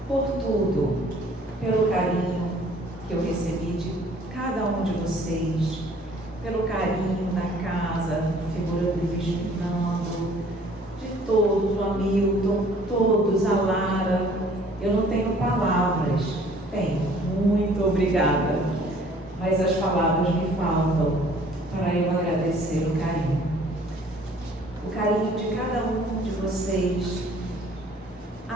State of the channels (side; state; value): both; normal; correlation 0.56